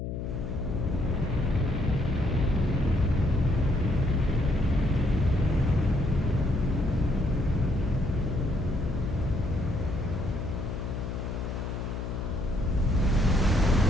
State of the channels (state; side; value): noise; left; hum, 5 dB below the sound